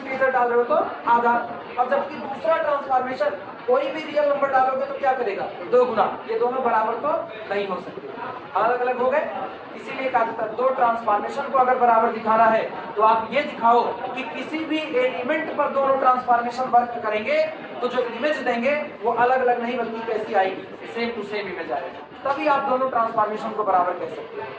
डाल रहे हो तो आधा। और जबकि दूसरा ट्रांसफॉर्मेशन कोई भी रियल नंबर डालोगे तो क्या करेगा, 2 गुना। ये दोनों बराबर तो नहीं हो सकते, अलग अलग हो गए। इसीलिए कहा जाता है 2 ट्रांसफॉर्मेशन को अगर बराबर दिखाना है तो आप ये दिखाओ कि किसी भी एलिमेंट पर दोनों ट्रांसफॉर्मेशन वर्क करेंगे तो जो इमेज देंगे वो अलग अलग नहीं बल्कि कैसी आएगी, सेम टू सेम इमेज आएगी। तभी आप दोनों ट्रांसफॉर्मेशन को बराबर कह सकते हैं।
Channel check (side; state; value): both; identical; correlation 1.00